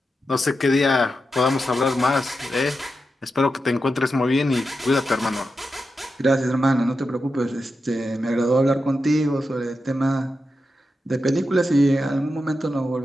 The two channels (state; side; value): normal; both; correlation 0.89